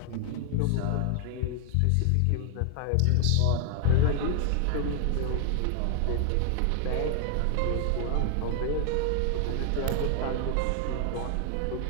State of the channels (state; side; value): different; both; correlation 0.00